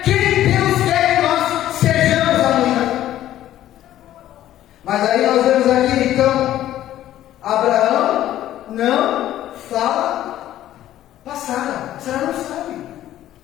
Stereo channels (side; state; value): right; quieter; 12.9 dB